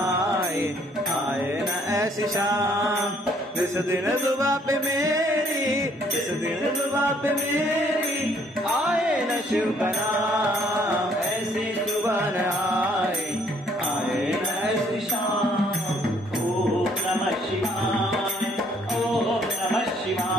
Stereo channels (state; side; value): normal; both; correlation 0.64